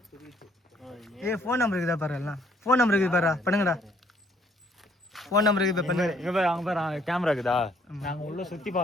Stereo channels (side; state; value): both; normal; correlation 0.65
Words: ஏய் ஃபோன் நம்பர் இருக்குதா பாரு எல்லாம். ஃபோன் நம்பர் இருக்குது பாரு பண்ணுங்கடா. ஃபோன் நம்பர் இருக்குது பண்ணுங்க. இங்க பாரு அங்க பாரு கேமரா இருக்குதா? நாங்க உள்ள சுத்தி